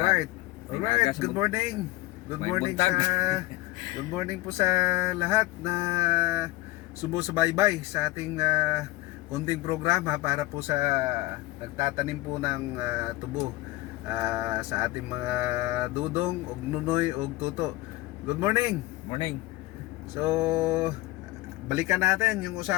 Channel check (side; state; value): right; quieter; 19.1 dB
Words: Alright. Alright. Good morning. Good morning sa good morning po sa lahat na sumusubaybay sa ating konting programa para po sa nagtatanim po ng tubo sa ating mga dudong og nunoy og tuto. Good morning. Morning. So balikan natin yung